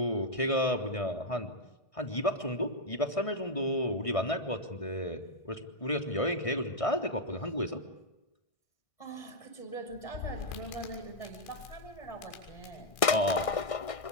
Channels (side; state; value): right; late; 1.6 ms